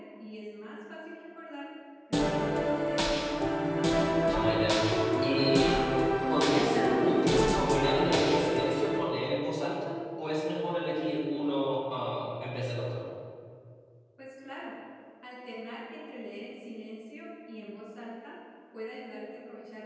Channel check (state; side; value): identical; both; correlation 1.00